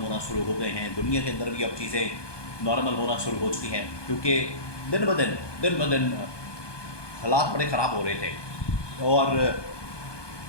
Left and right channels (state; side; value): late; right; 1.2 ms